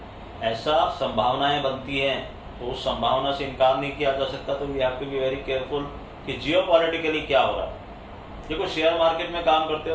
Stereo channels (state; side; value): identical; both; correlation 1.00